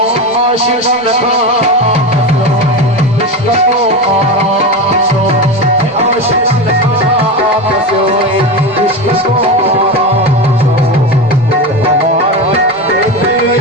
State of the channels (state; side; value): normal; both; correlation 0.21